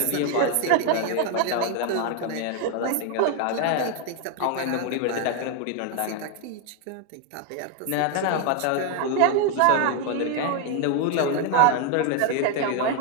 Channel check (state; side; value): different; both; correlation 0.01